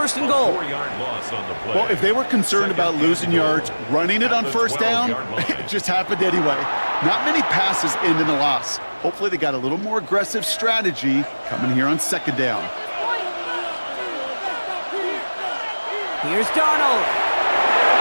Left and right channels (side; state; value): both; inverted; correlation -1.00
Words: and goal. 4-yard loss on the play. Well, if they were concerned about losing yards, running it on 1st down, it just happened anyway. Not many passes end in a loss. Hopefully they got a little more aggressive strategy coming here on 2nd down. Here's Darnold.